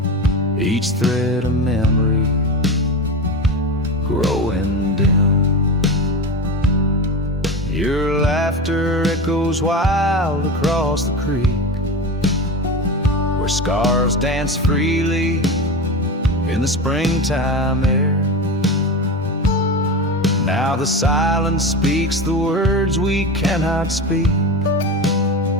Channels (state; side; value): normal; both; correlation 0.24